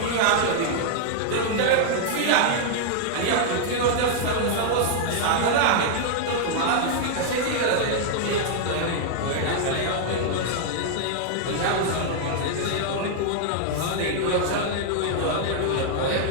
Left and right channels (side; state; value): both; different; correlation -0.01